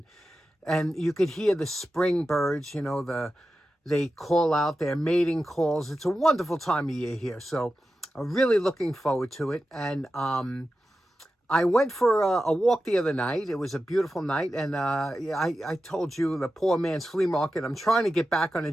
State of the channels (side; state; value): both; normal; correlation 0.92